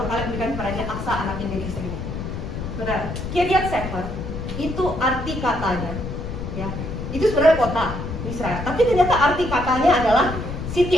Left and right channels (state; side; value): noise; left; rumble, 6 dB below the sound